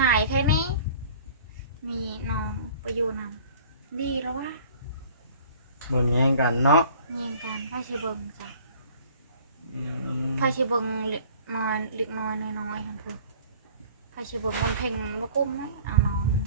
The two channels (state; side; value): inverted; both; correlation -0.49